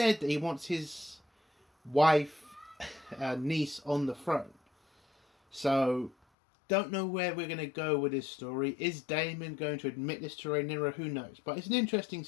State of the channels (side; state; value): right; drops out; at 6.2 s